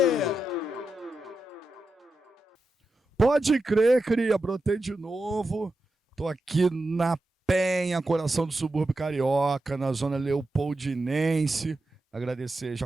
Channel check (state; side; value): normal; both; correlation 0.89